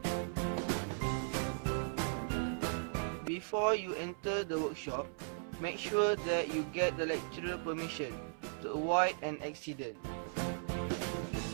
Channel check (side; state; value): left; silent; 53 dB below the other